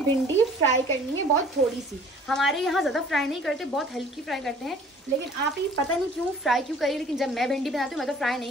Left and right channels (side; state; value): both; normal; correlation 0.51